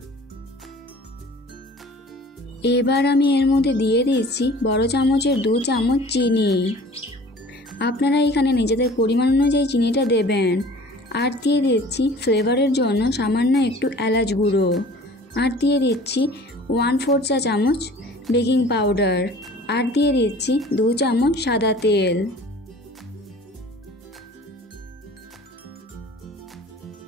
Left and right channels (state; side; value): normal; both; correlation 0.46